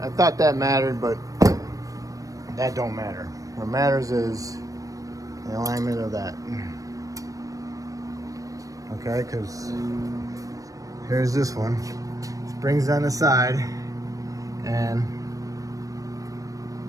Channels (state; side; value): late; left; 0.16 ms